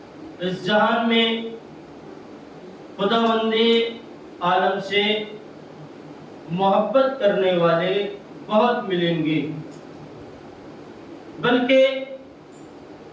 اس جہان میں خداوند عالم سے محبت کرنے والے بہت ملیں گے، بلکہ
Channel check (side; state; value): both; identical; correlation 1.00